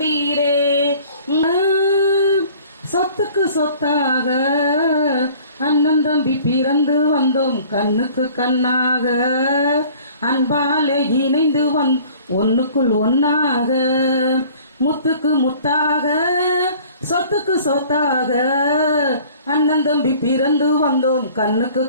சொத்துக்கு சொத்தாக அண்ணன் தம்பி பிறந்து வந்தோம் கண்ணுக்கு கண்ணாக, அன்பாலே இணைந்து ஒன்னுக்குள் ஒன்னாக, முத்துக்கு முத்தாக சொத்துக்கு சொத்தாக அண்ணன் தம்பி பிறந்து வந்தோம் கண்ணுக்கு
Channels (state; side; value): inverted; both; correlation -0.51